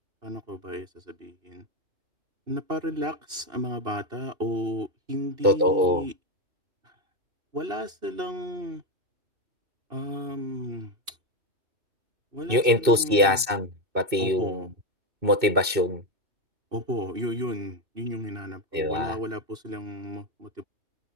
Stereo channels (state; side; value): late; left; 2.6 ms